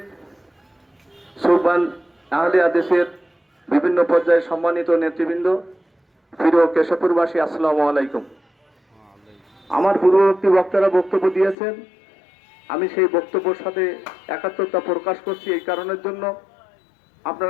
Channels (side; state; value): right; drops out; at 11.6 s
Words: সুবহান আহলে হাদিসের বিভিন্ন পর্যায়ে সম্মানিত নেতৃবৃন্দ, প্রিয় কেশবপুরবাসী, আসসালামু আলাইকুম। আমার পূর্ববর্তী বক্তারা বক্তব্য দিয়েছেন, আমি সেই বক্তব্যের সাথে একাত্মতা প্রকাশ করছি। এই কারণের জন্য